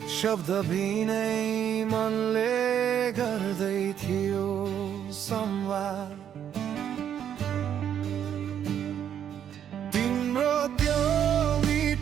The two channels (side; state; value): left; quieter; 9.3 dB